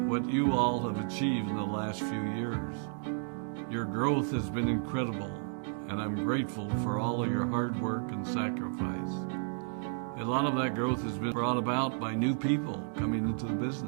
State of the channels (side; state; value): left; silent; 56 dB below the other